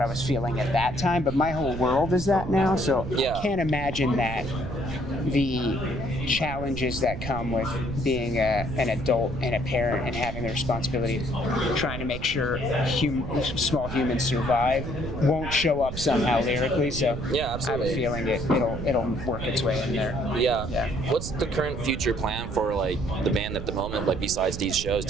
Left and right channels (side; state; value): right; noise; rumble, 7 dB below the sound